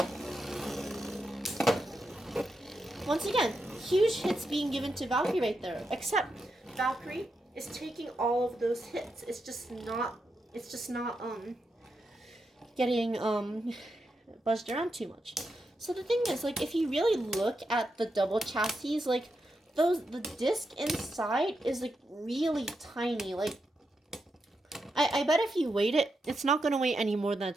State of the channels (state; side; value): normal; both; correlation 0.85